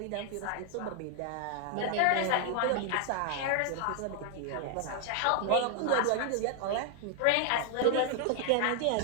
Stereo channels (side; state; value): both; different; correlation 0.00